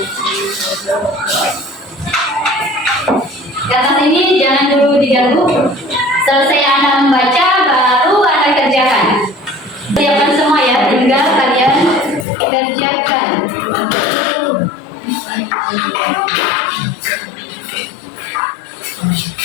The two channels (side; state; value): right; drops out; at 12.2 s